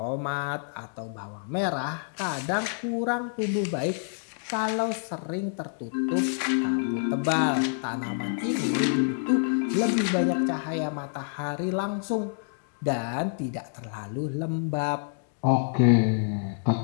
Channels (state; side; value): silent; right; 60 dB below the other